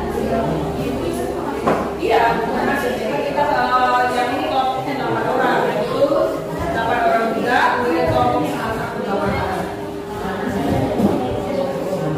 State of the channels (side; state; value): both; identical; correlation 1.00